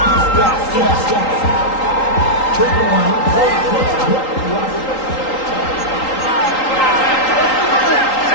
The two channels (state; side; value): late; right; 3.8 ms